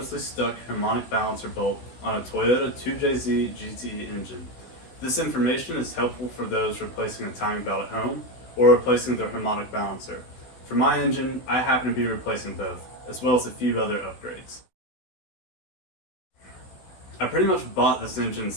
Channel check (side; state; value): right; late; 16 ms